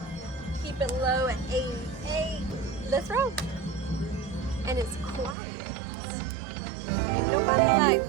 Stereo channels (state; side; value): drops out; left; at 5.4 s